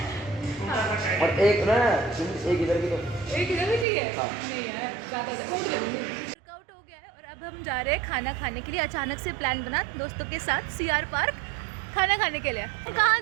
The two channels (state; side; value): drops out; left; at 3.9 s